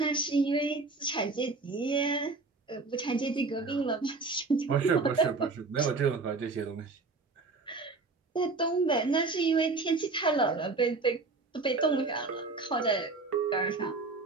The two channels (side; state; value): left; quieter; 3.8 dB